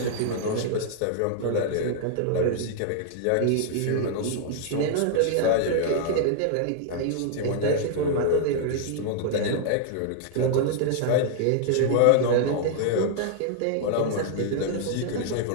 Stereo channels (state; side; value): different; both; correlation -0.01